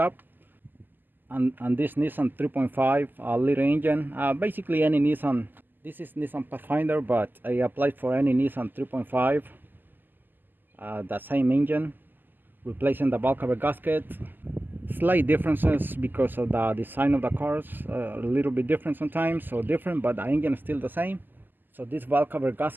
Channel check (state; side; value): late; left; 0.089 ms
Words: And this Nissan 3.5 liter engine, basically any Nissan. This is Nissan Pathfinder, but I applied for any Nissan 3.5, the same engine, replacing the bulk cover gasket. Slight differences because of the design of the cars, a little bit different sometimes, so different, but the engine is still the same. So this valve cover